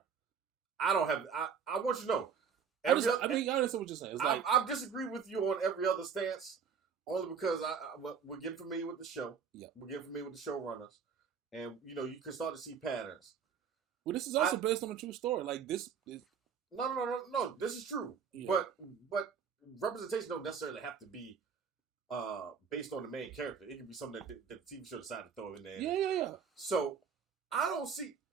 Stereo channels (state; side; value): quieter; left; 6.7 dB